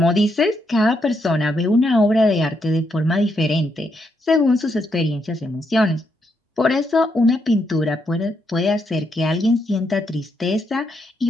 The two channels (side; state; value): both; normal; correlation 0.78